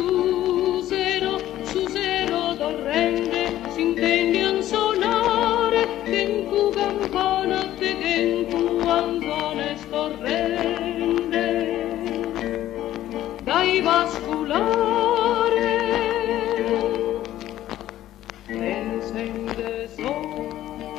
zero torrente si intende a suonare che in tu campana te che in tu anzone scorrende dai vasculare encende sol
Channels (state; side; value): quieter; right; 13.4 dB